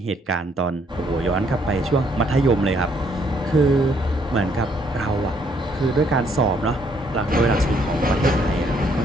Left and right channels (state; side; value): normal; both; correlation 0.68